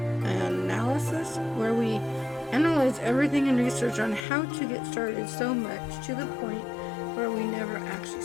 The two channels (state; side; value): drops out; right; at 4.2 s